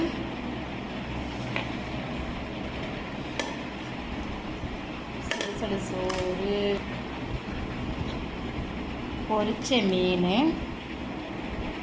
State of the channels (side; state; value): both; identical; correlation 1.00